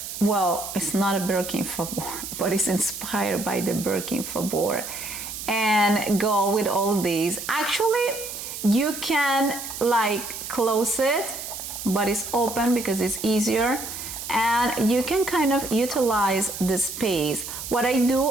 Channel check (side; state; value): right; noise; hiss, 8 dB below the sound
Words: Well, it's not a Birkin Fabor, but it's inspired by the Birkin Fabor, and go with all these. Actually, you can like close it, but it's open because it's easier, and you can kind of utilize the space. What I